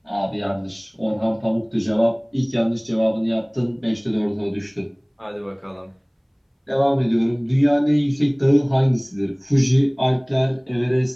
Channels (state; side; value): identical; both; correlation 1.00